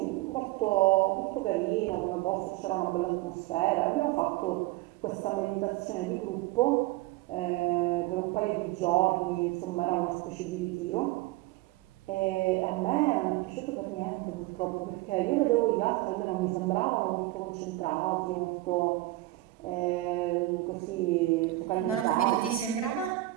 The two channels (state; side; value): quieter; left; 18.0 dB